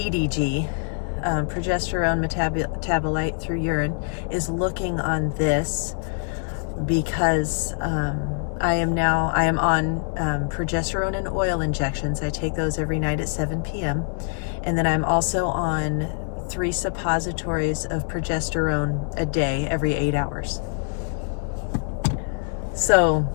progesterone metabolite through urine, is looking on this, because I am on progesterone and oil injections. I take those every night at 7 p.m. And then I'm also on 3 suppositories of progesterone a day every 8 hours. So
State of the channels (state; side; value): silent; right; 62 dB below the other